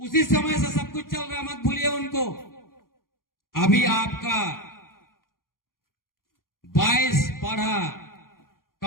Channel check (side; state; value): right; late; 0.91 ms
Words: समय से सब कुछ चल रहा, मत भूलिए उनको। अभी आपका 22 पढ़ा